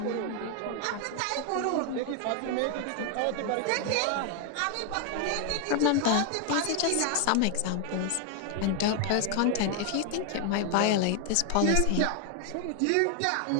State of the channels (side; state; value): both; different; correlation 0.00